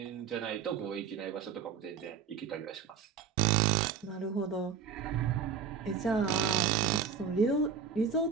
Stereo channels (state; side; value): quieter; left; 6.7 dB